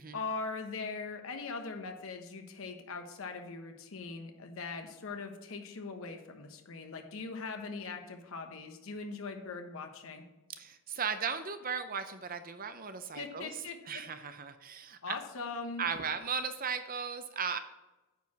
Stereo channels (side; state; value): both; normal; correlation -0.06